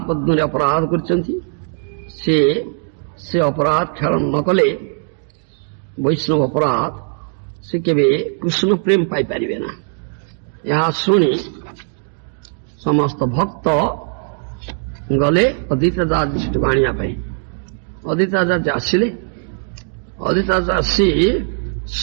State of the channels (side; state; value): left; silent; 58 dB below the other